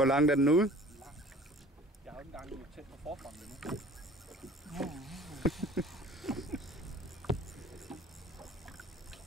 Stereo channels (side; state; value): both; normal; correlation 0.48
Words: langt er den ude? Jeg har jo ikke engang tæt på forfronten endnu.